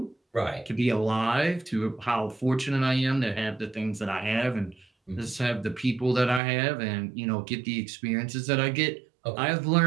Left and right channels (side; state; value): left; drops out; at 6.4 s